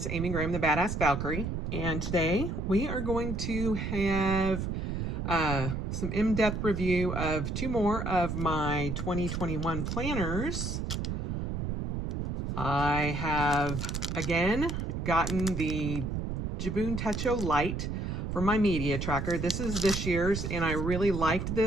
Amy Graham, the Badass Valkyrie, and today we are going to have some in-depth review of two more of my 2021 planners. I have, again, gotten the Jibun Techo Lite for my media tracker. This is this year's, and I really liked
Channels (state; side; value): noise; right; rumble, 2 dB below the sound